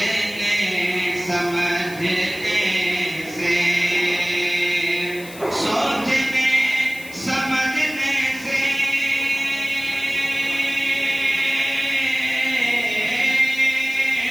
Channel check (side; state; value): left; noise; hiss, 17 dB below the sound